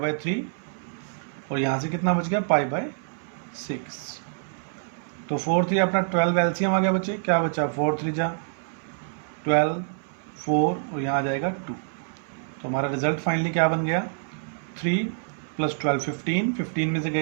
3 और यहाँ से कितना बच गया पाई बाई 6। तो 4 3 अपना 12 एलसीएम आ गया बच्चे, क्या बचा 4 3 जा 12, 4 और यहाँ आ जाएगा 2। तो हमारा रिजल्ट फाइनली क्या बन गया 3 + 12 15, 15 में से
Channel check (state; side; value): silent; left; 61 dB below the other